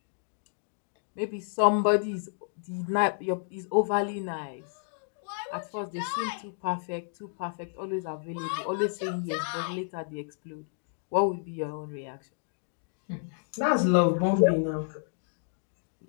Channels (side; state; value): right; silent; digital silence